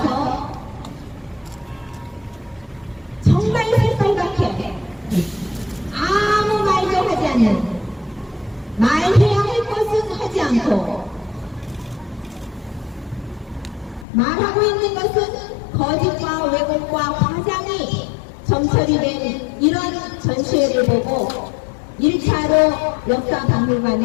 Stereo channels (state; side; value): drops out; right; at 14.1 s